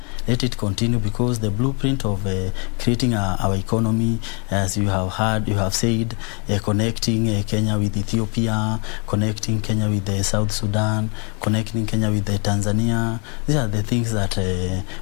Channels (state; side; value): quieter; right; 35.3 dB